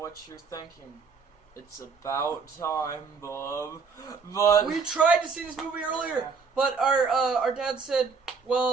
what you're thinking. It's about time, Bob. But we tried to see this movie earlier, but our dad said,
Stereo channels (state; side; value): quieter; left; 5.1 dB